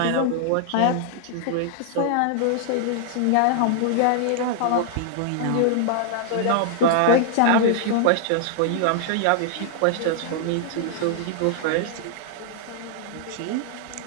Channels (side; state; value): both; different; correlation -0.01